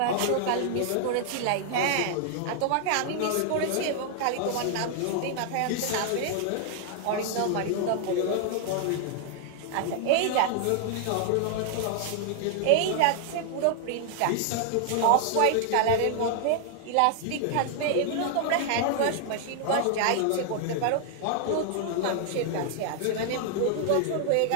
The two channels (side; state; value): both; different; correlation 0.00